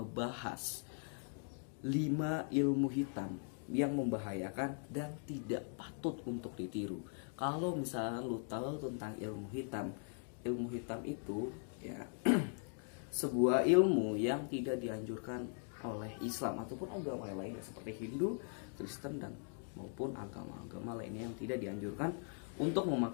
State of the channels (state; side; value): silent; right; 51 dB below the other